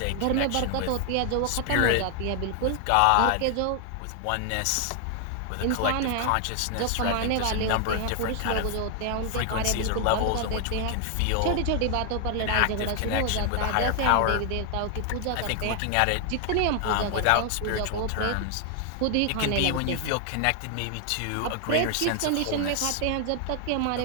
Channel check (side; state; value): both; different; correlation 0.00